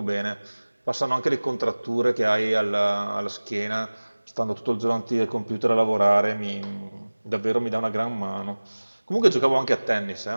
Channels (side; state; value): both; inverted; correlation -1.00